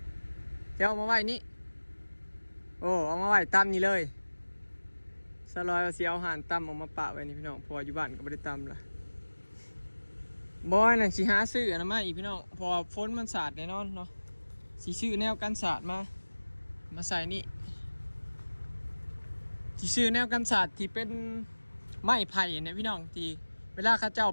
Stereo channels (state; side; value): inverted; both; correlation -1.00